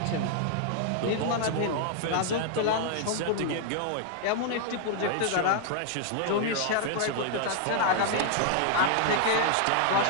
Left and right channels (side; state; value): both; different; correlation -0.01